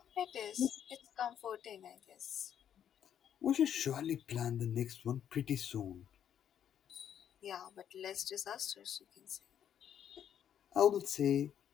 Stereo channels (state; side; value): quieter; right; 9.4 dB